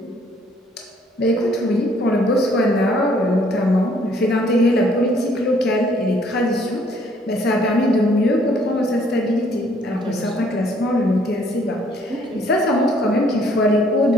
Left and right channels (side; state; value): both; normal; correlation 0.63